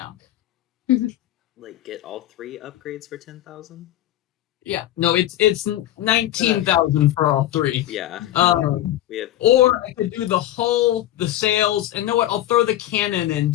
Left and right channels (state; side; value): quieter; right; 13.6 dB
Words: Like, get all 3 upgrades for 10,000? Yeah. No, it's 19,000 for all 3. Yeah. We have. Or I could do the hull, the sails, and know what? I'll throw the cannon in